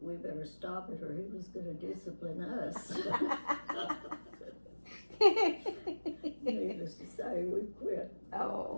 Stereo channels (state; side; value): inverted; both; correlation -1.00